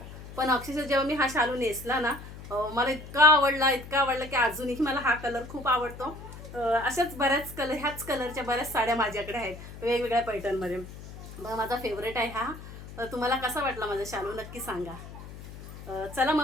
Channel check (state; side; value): noise; left; hum, 14 dB below the sound